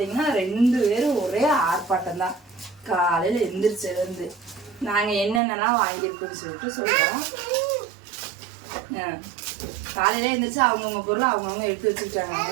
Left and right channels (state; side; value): drops out; left; at 5.4 s